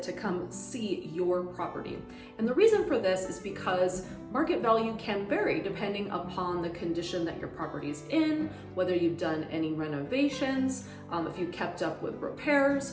to come see your property. And the reason for this is because market value can vary depending upon the condition that your property is in, whether you've done any renovations, if you kept up with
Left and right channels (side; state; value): both; identical; correlation 1.00